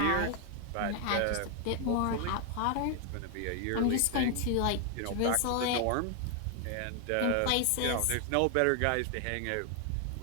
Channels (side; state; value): both; different; correlation 0.00